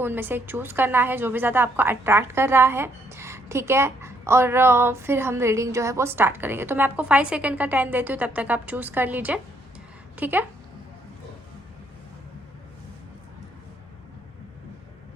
उनमें से एक चूज़ करना है जो भी ज़्यादा आपको अट्रैक्ट कर रहा है, ठीक है। और फिर हम रीडिंग जो है वो स्टार्ट करेंगे। तो मैं आपको 5 सेकेंड का टाइम देती हूँ, तब तक आप चूज़ कर लीजिए, ठीक है।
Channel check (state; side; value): normal; both; correlation 0.70